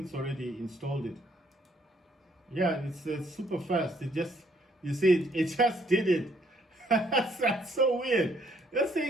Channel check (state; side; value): normal; both; correlation 0.67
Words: it's already installed it. Yeah, it's super fast. It just, you see, it just did it. That's so weird. This